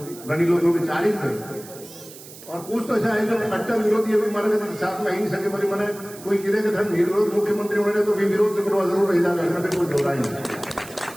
गणी लोगों की 40 है। और कुछ तो ऐसा है जो कट्टर विरोधी अभी मारे गए साथ में ही नहीं सके बोली मैंने कोई किधर के धर्म विरोध मुख्यमंत्री होने तो भी विरोध से करवा जरूर रह जाएगा, इसमें कोई दो राय नहीं।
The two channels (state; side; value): noise; right; hiss, 17 dB below the sound